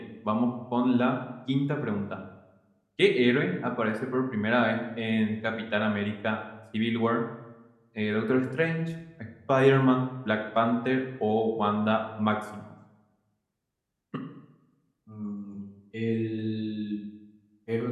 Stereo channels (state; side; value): identical; both; correlation 1.00